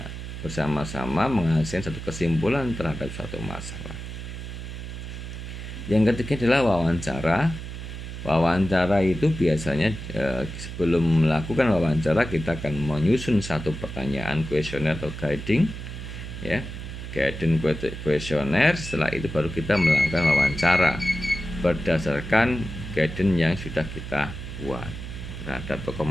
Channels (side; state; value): right; noise; hum, 9 dB below the sound